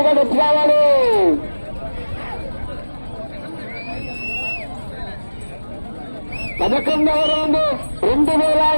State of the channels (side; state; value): both; inverted; correlation -1.00